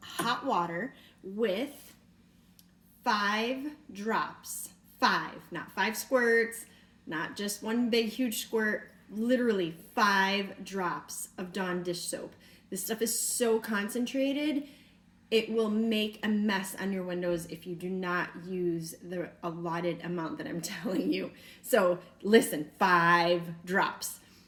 water with 5 drops. 5, not 5 squirts, not just one big huge squirt, literally 5 drops of Dawn dish soap. This stuff is so concentrated, it will make a mess on your windows if you do not use the allotted amount that I'm telling you. So listen, 5 drops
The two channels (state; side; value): identical; both; correlation 1.00